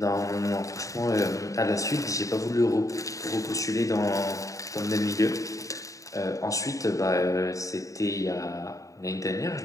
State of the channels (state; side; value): late; right; 0.16 ms